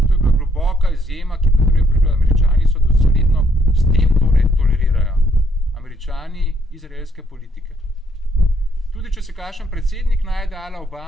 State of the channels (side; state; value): both; normal; correlation 0.72